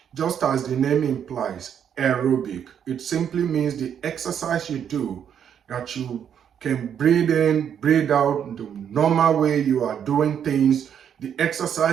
Just as the name implies, aerobic, it simply means the exercise you do that you can breathe in, breathe out the normal way you are doing things, the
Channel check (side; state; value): left; quieter; 8.6 dB